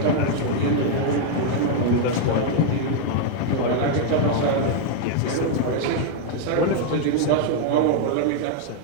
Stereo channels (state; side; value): different; both; correlation 0.00